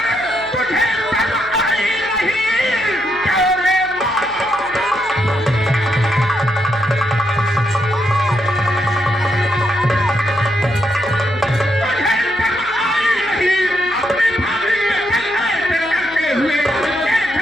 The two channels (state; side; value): noise; left; hum, 22 dB below the sound